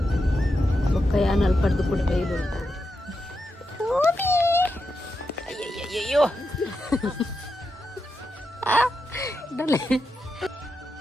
ಬೊಕ್ಕ ಯಾನಲ್ಲಿ ಪಡೆದು ಕೂಡ ಬೈಲು ಅಯ್ಯಯ್ಯಯ್ಯೋ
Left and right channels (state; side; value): normal; both; correlation 0.87